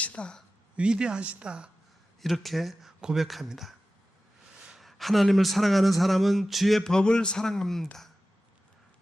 위대하시다 이렇게 고백합니다. 하나님을 사랑하는 사람은 주의 법을 사랑합니다.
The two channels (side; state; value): both; normal; correlation 0.95